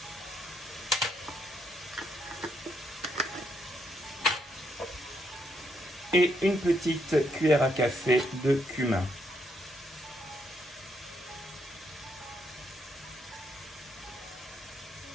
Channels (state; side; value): normal; both; correlation 0.76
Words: et une petite cuillère à café de cumin.